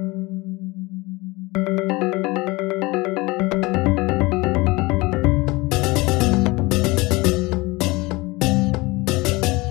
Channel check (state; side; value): quieter; right; 23.1 dB